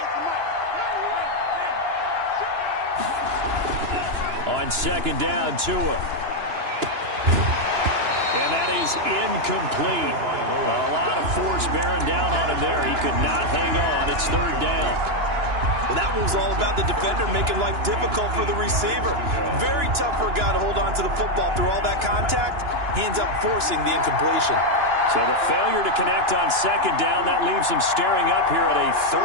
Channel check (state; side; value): late; left; 2.9 ms